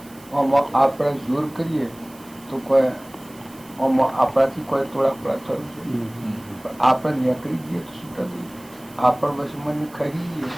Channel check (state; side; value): noise; right; hiss, 24 dB below the sound